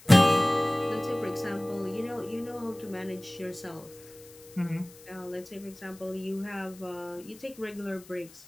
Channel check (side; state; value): left; noise; hiss, 22 dB below the sound